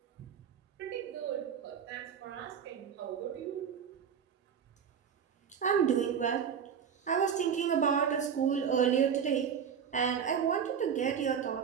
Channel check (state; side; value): quieter; left; 7.6 dB